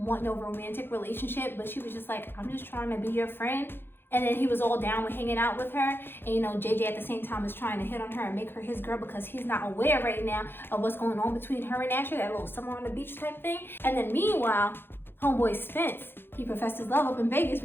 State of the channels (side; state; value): right; late; 0.10 ms